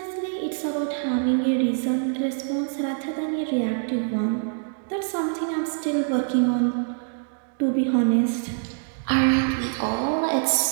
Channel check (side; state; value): left; silent; digital silence